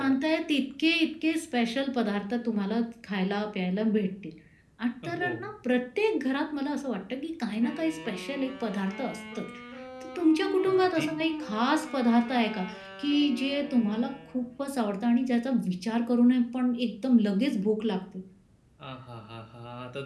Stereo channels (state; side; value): identical; both; correlation 1.00